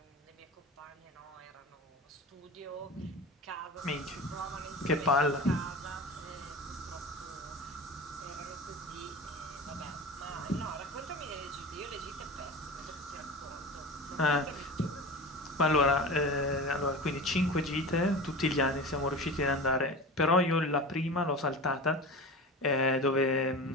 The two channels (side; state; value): both; normal; correlation 0.30